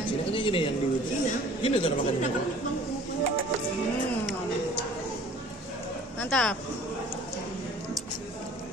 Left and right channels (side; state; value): both; normal; correlation 0.50